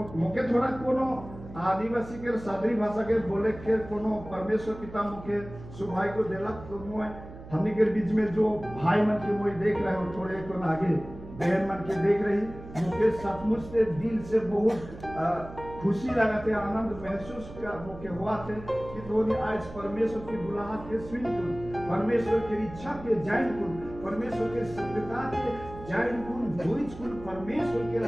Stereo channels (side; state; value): right; noise; hum, 15 dB below the sound